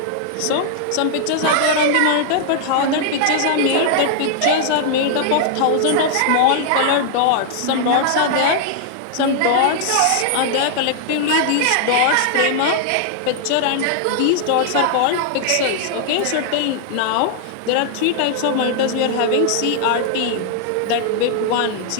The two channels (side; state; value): both; different; correlation -0.01